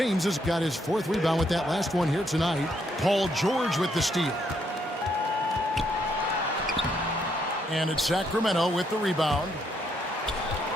has got his 4th rebound with that last one here tonight. Paul George with the steal. And it's Sacramento with the rebound.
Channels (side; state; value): both; normal; correlation 0.74